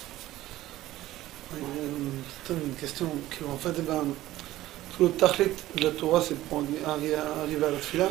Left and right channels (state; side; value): quieter; left; 15.5 dB